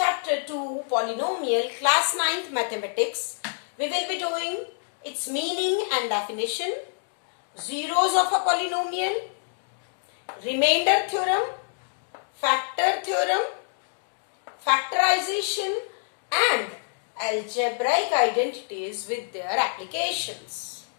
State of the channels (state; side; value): silent; right; digital silence